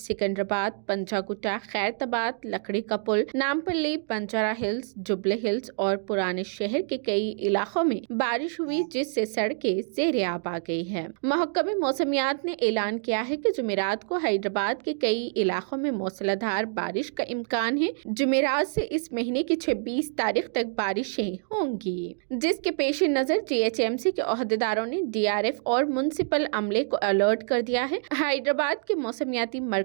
पंजागुट्टा, खैरताबाद, लकड़ी का पुल, नामपल्ली, बंजारा हिल्स, जुबले हिल्स और पुराने शहर के कई इलाकों में बारिश हुई, जिससे सड़कें ज़ेर-ए-आब आ गई है। महकमे मौसमियात ने ऐलान किया है कि जुमेरात को हैदराबाद के कई इलाकों में मूसलाधार बारिश का इम्कान है। जुमेरात से इस महीने की 26 तारीख तक बारिशें होंगी, जिसके पेश नजर टीएचएमसी के ओहदेदारों ने डीआरएफ और म्युनिसिपल अमले को अलर्ट कर दिया है। हैदराबाद के मौसमियाती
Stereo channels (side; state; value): left; silent; 60 dB below the other